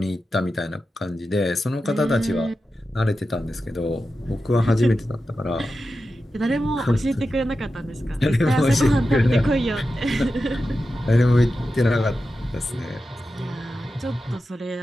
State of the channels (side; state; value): both; normal; correlation 0.91